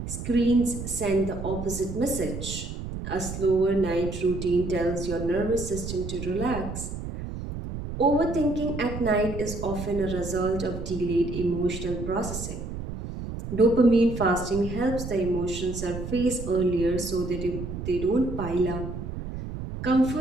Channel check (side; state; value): right; noise; rumble, 7 dB below the sound